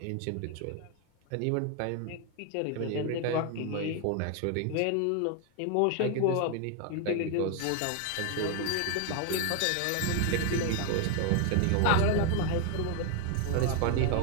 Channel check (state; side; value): different; both; correlation 0.01